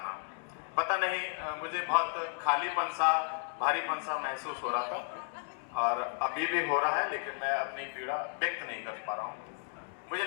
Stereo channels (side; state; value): right; silent; 55 dB below the other